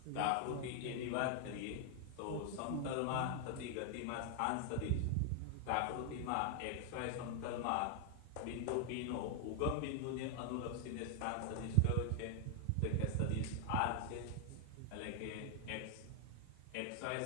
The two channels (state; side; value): different; both; correlation 0.00